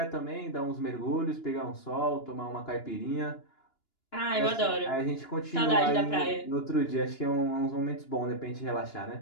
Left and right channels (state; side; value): late; right; 2.9 ms